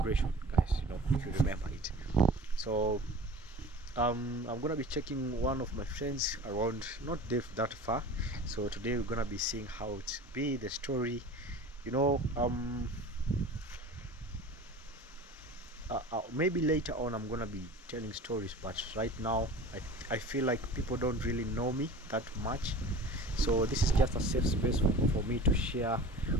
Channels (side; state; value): both; normal; correlation 0.39